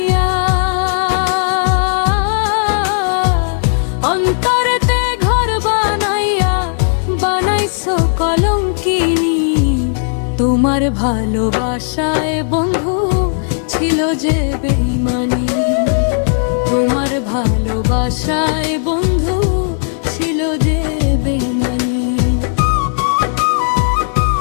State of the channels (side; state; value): right; silent; digital silence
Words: অন্তরেতে ঘর বানাইয়া বানাইছো কলঙ্কিনী। তোমার ভালোবাসায় বন্ধু ছিল যে বেঈমানি, তোমার ভালোবাসায় বন্ধু ছিল যে বেঈমানি।